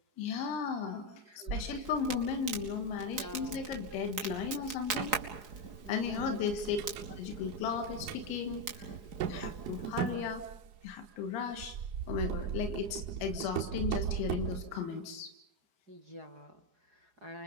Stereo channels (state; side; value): late; left; 4.8 ms